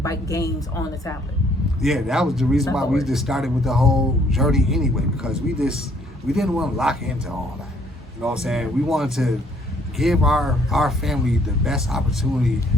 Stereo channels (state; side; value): normal; both; correlation 0.64